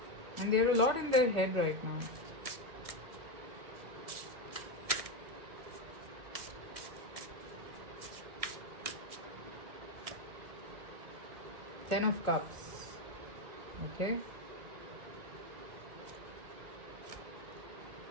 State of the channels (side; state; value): left; late; 2.2 ms